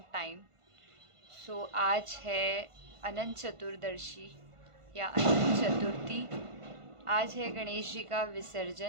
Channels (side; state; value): left; late; 1.5 ms